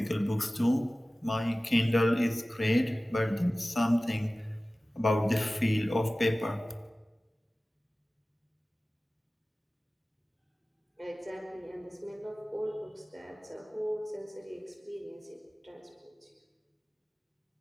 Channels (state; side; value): normal; both; correlation 0.97